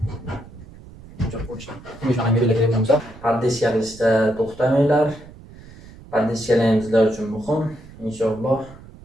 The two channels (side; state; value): right; noise; rumble, 19 dB below the sound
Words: Shunaqa belgilagan bo'lsa, pardissiya qilishda to'xtamanglar. Pardissiyalar bizlar uchun muhim. Inshaalloh